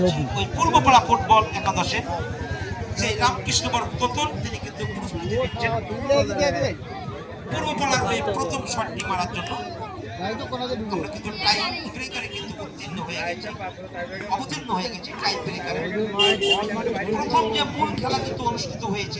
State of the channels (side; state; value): both; identical; correlation 1.00